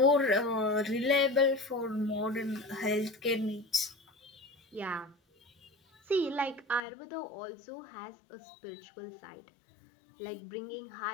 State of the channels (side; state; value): right; drops out; at 6.8 s